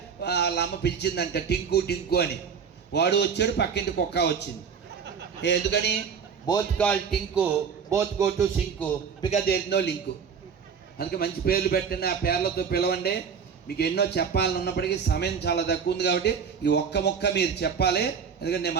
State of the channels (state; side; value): quieter; left; 6.6 dB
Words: వాళ్ళ అమ్మ పిలిచిందంట టింకు టింకు అని. వాడు వచ్చాడు, పక్కింటి కుక్క వచ్చింది. ఎందుకని? Both call Tinku, both go to sink, because there is no link. అందుకే మంచి పేర్లు పెట్టండి, ఆ పేర్లతో పిలవండి. మీకు ఎన్నో చెప్పాలని ఉన్నప్పటికీ సమయం చాలా తక్కువ ఉంది కాబట్టి ఈ ఒక్క మొక్క మీరు చెప్పాలి. ఎందుకంటే నేను